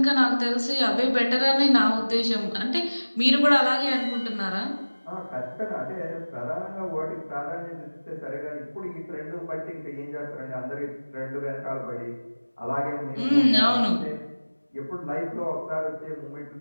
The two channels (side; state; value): both; inverted; correlation -1.00